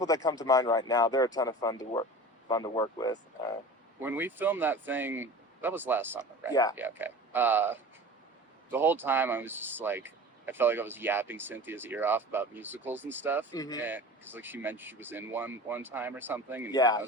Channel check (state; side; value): normal; both; correlation 0.37